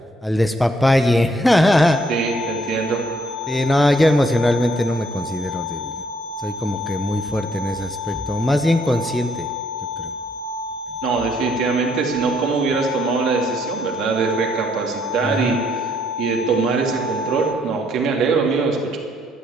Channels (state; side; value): normal; both; correlation 0.68